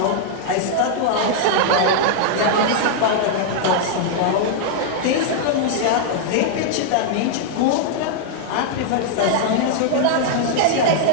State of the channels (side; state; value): both; different; correlation -0.01